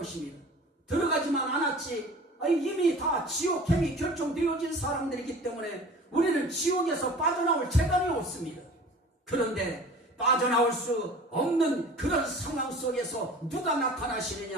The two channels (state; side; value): normal; both; correlation 0.42